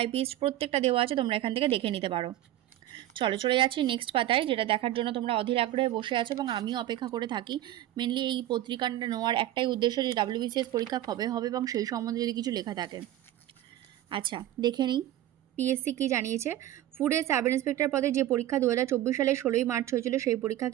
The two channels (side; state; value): left; quieter; 13.5 dB